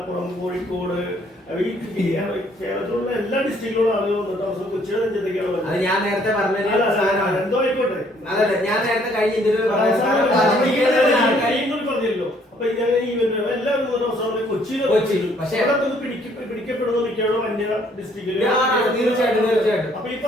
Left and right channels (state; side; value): normal; both; correlation 0.64